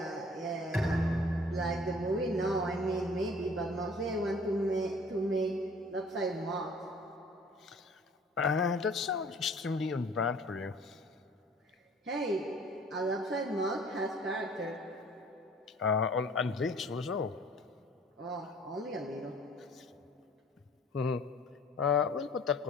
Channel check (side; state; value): both; normal; correlation 0.51